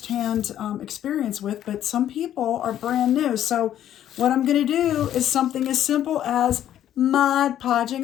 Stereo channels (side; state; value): right; quieter; 11.3 dB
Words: experience with, but some people are brand new. So what I'm going to do is something as simple as Mod